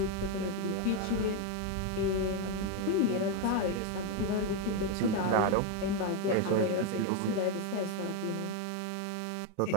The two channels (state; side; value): different; both; correlation 0.02